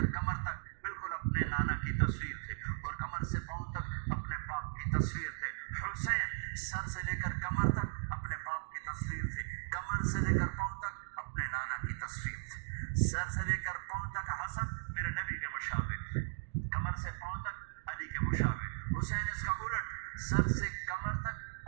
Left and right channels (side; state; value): left; silent; digital silence